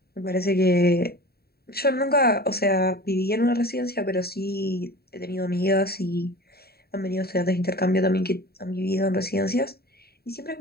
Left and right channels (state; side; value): late; right; 0.45 ms